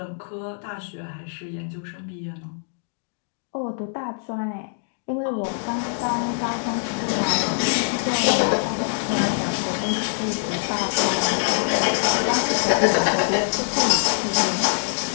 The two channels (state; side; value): silent; right; digital silence